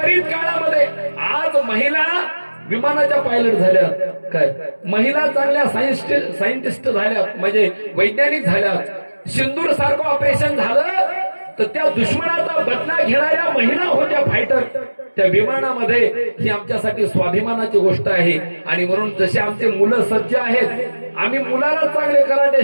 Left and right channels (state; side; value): inverted; both; correlation -1.00